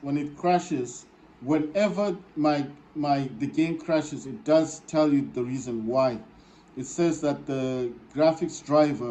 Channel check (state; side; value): identical; both; correlation 1.00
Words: when it crashes, whenever the game crashes, it does tell you the reason why. It says that the graphics